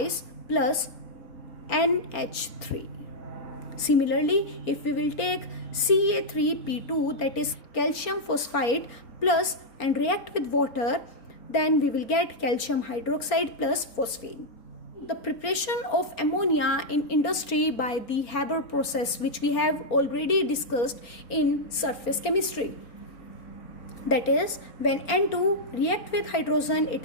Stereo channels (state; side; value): late; right; 4.3 ms